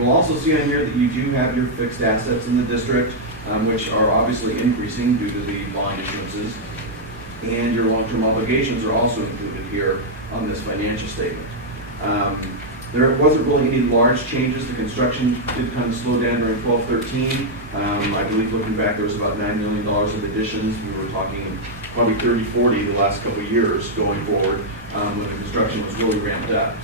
also see on here that you do have your fixed assets in the district, which are obviously increasing due to the bond issuances. And your long-term obligations are also included here on this financial statement. There wasn't really any large changes. The construction did kind of slow down during 12-13. I believe looking back, there was about $9 million of additions. We were talking probably 30-40 the last couple of years going forward when the construction was really ramped up.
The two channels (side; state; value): both; normal; correlation -0.04